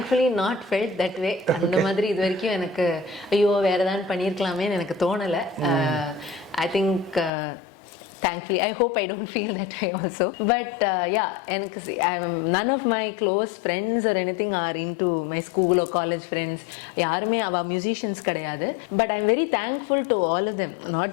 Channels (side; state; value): right; drops out; at 7.3 s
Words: not felt that way. அந்த மாதிரி இது வரைக்கும் எனக்கு ஐயோ வேற ஏதாவது பண்ணியிருக்கலாமேன்னு எனக்கு தோணலை. I think thankfully, I hope I don't feel that way also. But எனக்கு none of my close friends or anything are into my school or college friends. யாருமே அவ musicians கிடையாது. But I'm very thankful to all of them. Not